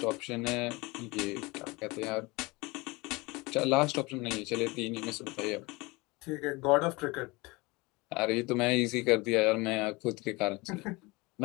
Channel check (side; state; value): right; quieter; 24.3 dB